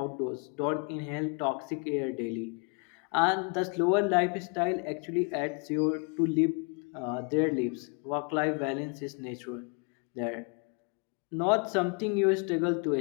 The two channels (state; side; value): quieter; right; 36.7 dB